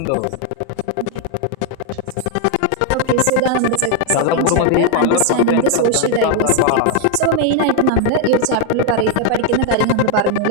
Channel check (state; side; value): different; both; correlation 0.01